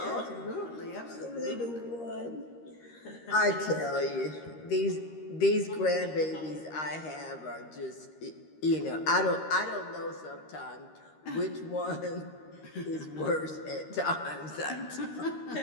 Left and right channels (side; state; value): right; late; 13 ms